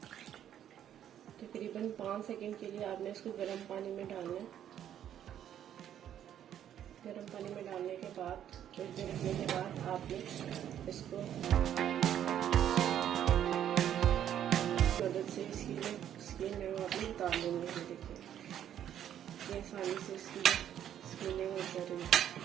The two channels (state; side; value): quieter; left; 10.3 dB